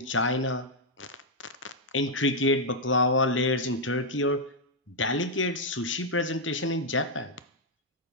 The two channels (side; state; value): both; normal; correlation -0.03